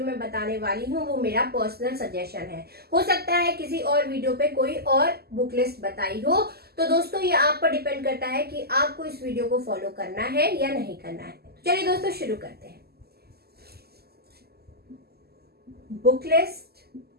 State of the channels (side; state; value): left; late; 0.46 ms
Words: में बताने वाली हूँ वो मेरा पर्सनल सजेशन है। हो सकता है किसी और वीडियो पे कोई और बुक लिस्ट बताई हो, तो दोस्तों ये आप पर डिपेंड करता है कि आपको इस वीडियो को फॉलो करना है या नहीं करना है। चलिए दोस्तों, शुरू करते हैं। Book list